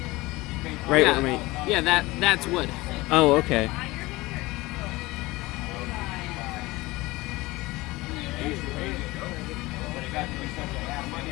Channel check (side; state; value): right; quieter; 20.8 dB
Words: right Yeah, where my? yeah, that's wood. Oh, okay.